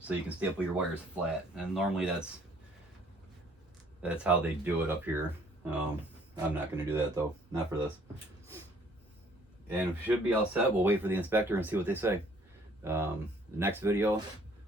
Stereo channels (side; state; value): both; normal; correlation 0.59